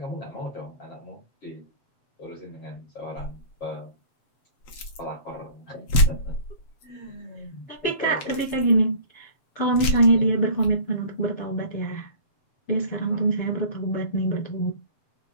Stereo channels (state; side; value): late; right; 7.7 ms